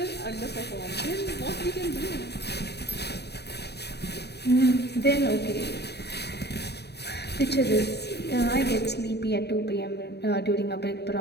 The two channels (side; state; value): right; late; 0.48 ms